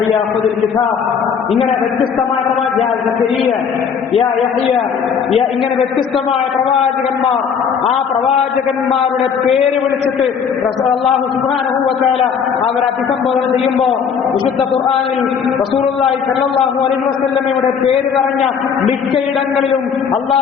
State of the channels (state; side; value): quieter; right; 6.8 dB